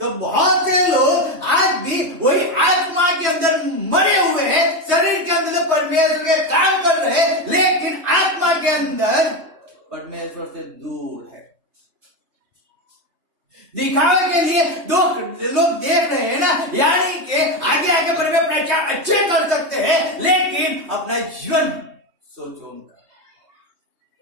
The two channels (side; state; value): left; late; 3.2 ms